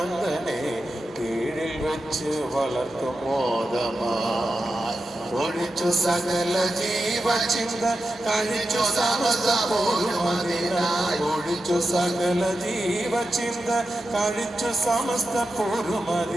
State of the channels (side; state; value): both; normal; correlation 0.90